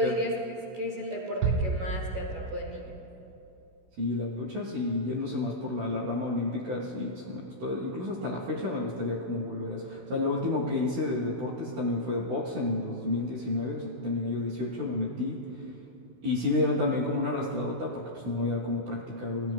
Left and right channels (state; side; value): late; left; 16 ms